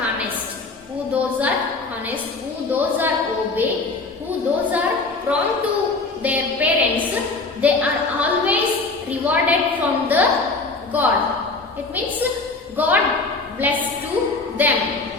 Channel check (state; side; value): quieter; right; 3.6 dB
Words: honest, who those are honest, who those are obey, who those are prompt to their parents, they are always rewarded from the God. It means God bless to them.